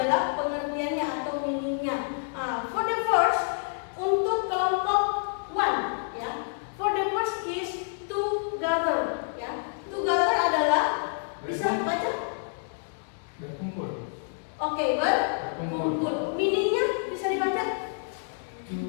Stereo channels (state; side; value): silent; right; digital silence